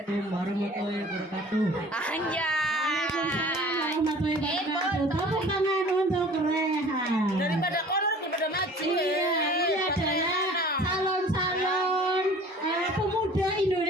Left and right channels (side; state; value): both; normal; correlation 0.47